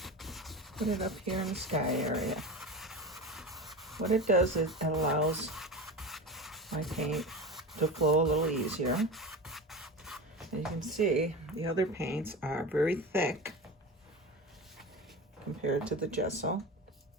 put it up here in the sky area. What it does is it allows my paint to flow a little easier. As you can see, the other paints are very thick compared to the gesso.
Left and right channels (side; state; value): both; normal; correlation 0.27